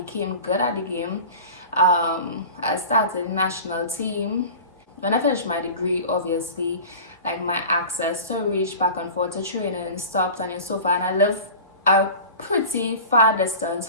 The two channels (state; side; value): inverted; both; correlation -0.37